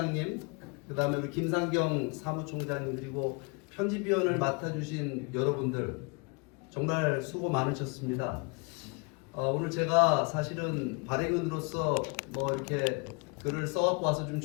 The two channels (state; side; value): quieter; right; 31.9 dB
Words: 그 다음에 우리 김상경 사무총장님 그리고 편집위원을 맡아주신 여러분들 정말 수고 많으셨습니다. 오늘 제가 사실은 발행인으로서 뭐 이렇게 글을 써갖고 와서 좀